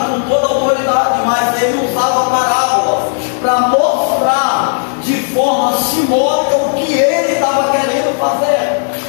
com toda a autoridade, mas Ele usava parábolas para mostrar de forma simbólica o que Ele estava querendo fazer.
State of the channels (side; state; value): right; silent; digital silence